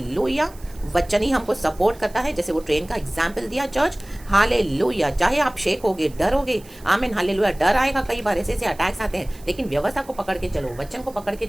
वचन ही हमको सपोर्ट करता है, जैसे वो ट्रेन का एग्जाम्पल दिया चर्च। हालेलुया। चाहे आप शेक होगे, डरोगे, आमीन हालेलुया। डर आएगा, कई बार ऐसे अटैक्स आते हैं, लेकिन व्यवस्था को पकड़ के चलो, वचन को पकड़ के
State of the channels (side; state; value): right; noise; hiss, 24 dB below the sound